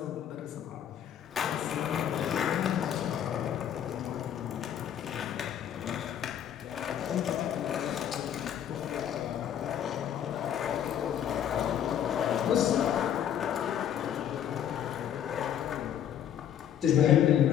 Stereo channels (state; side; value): quieter; right; 9.8 dB